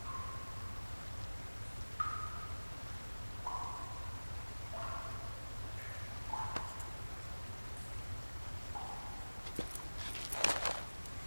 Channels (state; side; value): inverted; both; correlation -1.00